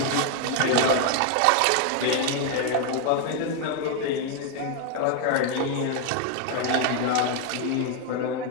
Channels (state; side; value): different; both; correlation 0.00